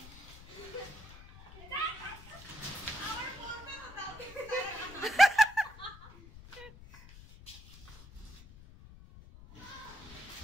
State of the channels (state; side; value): noise; left; rumble, 18 dB below the sound